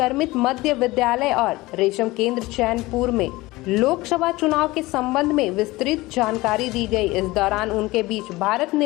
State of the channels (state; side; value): quieter; right; 20.2 dB